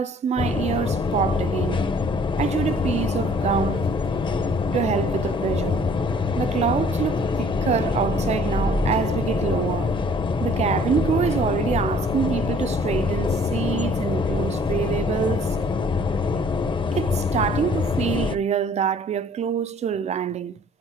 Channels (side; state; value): both; normal; correlation 0.56